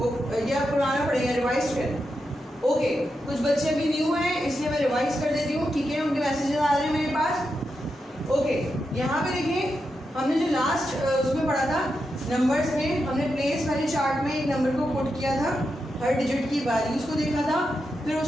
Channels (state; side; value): normal; both; correlation 0.86